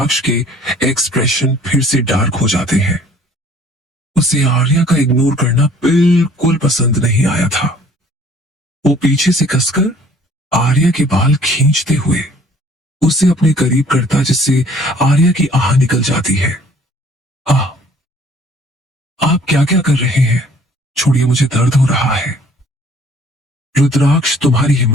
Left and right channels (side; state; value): both; normal; correlation 0.55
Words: के एक्सप्रेशन फिर से डार्क हो जाते हैं। उसे आर्या का इग्नोर करना बिल्कुल पसंद नहीं आया था। वो पीछे से कसकर आर्या के बाल खींचते हुए उसे अपने करीब करता, जिससे आर्या की आह निकल जाती है। आह, आप क्या क्या कर रहे हैं? छोड़िए, मुझे दर्द हो रहा है। रुद्राक्ष, तुम्हारी